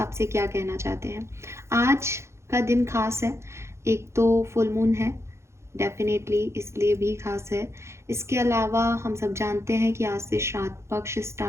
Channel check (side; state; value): left; late; 0.13 ms